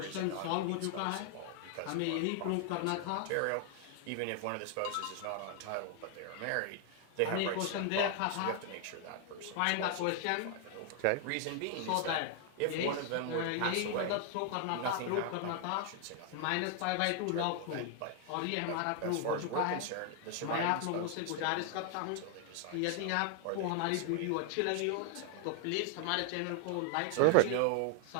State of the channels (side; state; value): both; different; correlation 0.00